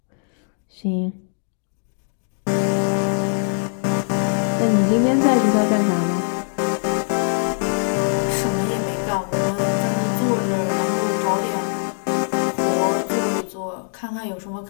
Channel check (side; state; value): right; silent; digital silence